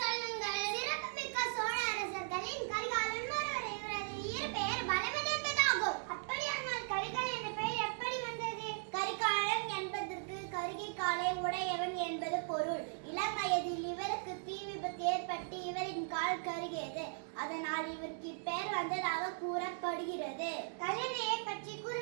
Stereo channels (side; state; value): left; silent; digital silence